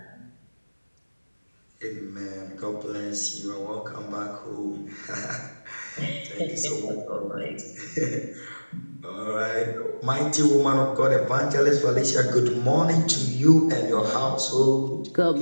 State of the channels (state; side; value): inverted; both; correlation -1.00